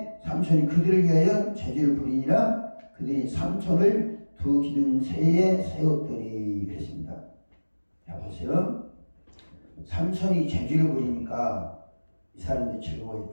삼손이 그들을 위하여 제주를 부리니라. 그들이 삼손을 두 기둥새에 세웠더니 그랬습니다. 자 보세요. 삼손이 제주를 부리니까 이 사람들이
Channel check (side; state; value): both; inverted; correlation -1.00